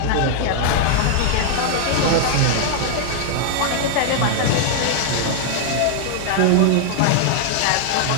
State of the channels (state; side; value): different; both; correlation 0.00